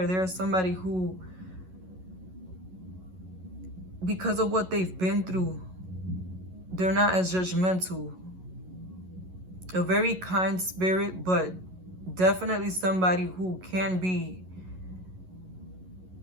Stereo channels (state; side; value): late; left; 11 ms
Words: They are somebody who because of what they've been through, they're not as judgmental. A very kind spirit, but definitely somebody who can be